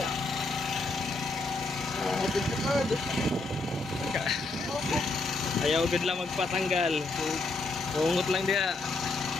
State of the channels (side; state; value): right; quieter; 3.3 dB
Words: ayaw gud lang magpatanggal. Bungot lang dia.